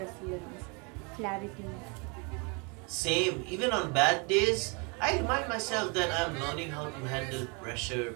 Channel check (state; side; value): quieter; left; 31.9 dB